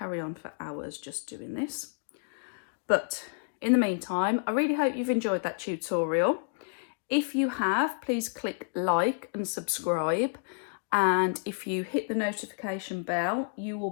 on for hours just doing this. But in the meantime, I really hope you've enjoyed that tutorial. If you have, please click like and subscribe. And if you hit the notification bell, you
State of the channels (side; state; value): right; silent; 58 dB below the other